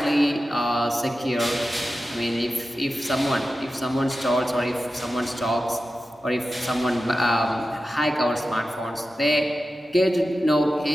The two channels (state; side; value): normal; both; correlation 0.93